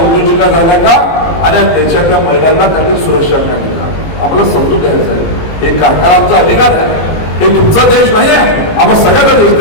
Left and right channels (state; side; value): late; right; 19 ms